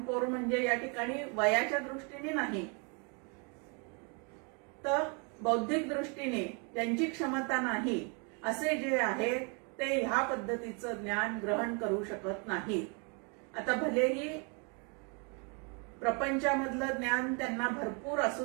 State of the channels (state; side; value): quieter; left; 35.5 dB